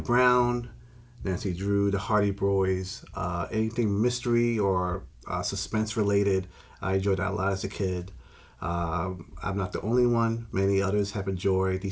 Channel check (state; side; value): identical; both; correlation 1.00